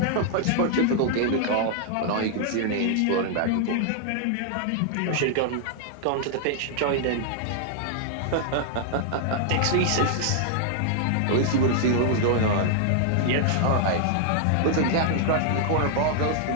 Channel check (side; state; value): both; different; correlation 0.00